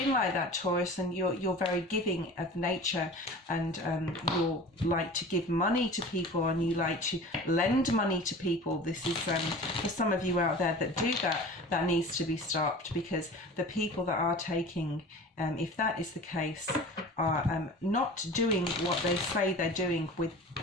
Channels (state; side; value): normal; both; correlation 0.39